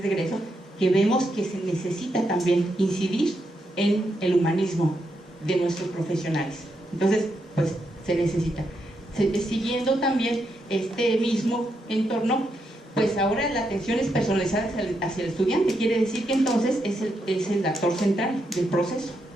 de egreso, que vemos que se necesita también incidir en el humanismo de nuestros profesionales? Entonces, pues se necesita. Siguiendo también este mismo entorno, pues ahora la atención es personalizada hacia el estudiante, quiere decir que entonces es el actor central del proceso.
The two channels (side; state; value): both; normal; correlation 0.82